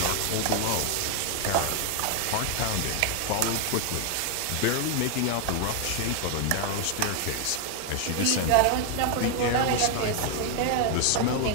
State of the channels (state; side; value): different; both; correlation 0.00